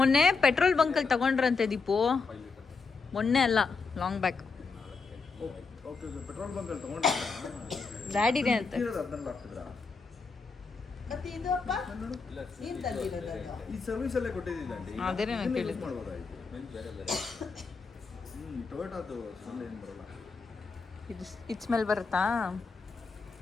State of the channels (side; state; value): right; quieter; 4.7 dB